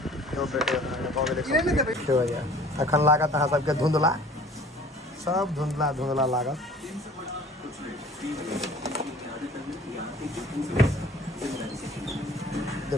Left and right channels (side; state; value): both; normal; correlation 0.49